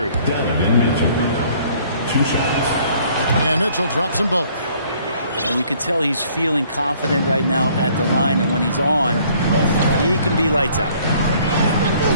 Donovan Mitchell. 2 shots. And Mitchell drops them both. And you can tell he's feeling confident right now at the line, and when he's on, he can be lights out.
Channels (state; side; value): inverted; both; correlation -0.59